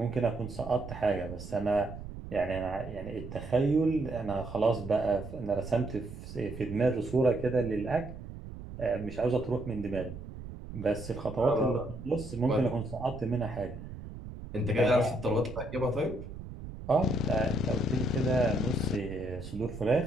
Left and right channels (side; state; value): right; noise; rumble, 11 dB below the sound